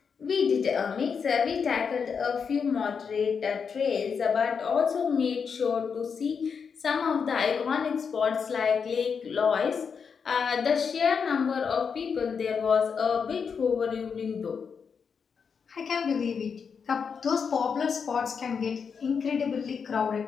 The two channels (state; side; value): quieter; right; 6.2 dB